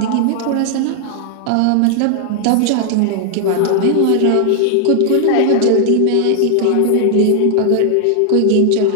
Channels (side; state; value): both; different; correlation 0.00